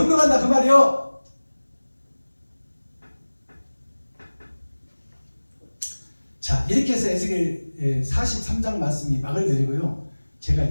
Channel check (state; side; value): inverted; both; correlation -1.00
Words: 그 말이요. 자, 이렇게 해서 에스겔 43장 말씀이 막을 내리고요.